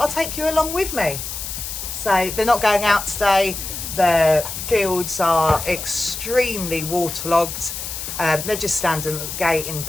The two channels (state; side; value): noise; left; hiss, 7 dB below the sound